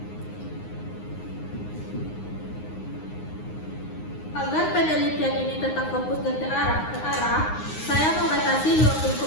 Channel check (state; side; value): late; right; 9.6 ms